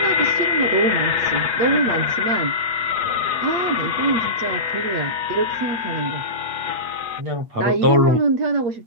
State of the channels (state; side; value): late; left; 8.6 ms